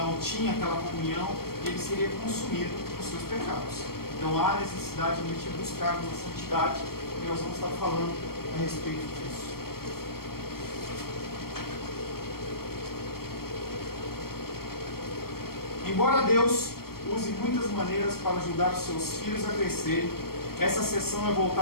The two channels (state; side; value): late; right; 0.94 ms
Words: tinha aquela comunhão, ele seria consumido por seus pecados. Então há necessidade de buscar uma santidade, e nós vamos estar falando a respeito disso. Embora Deus use muitas maneiras para ajudar os seus filhos a crescerem, essa sessão é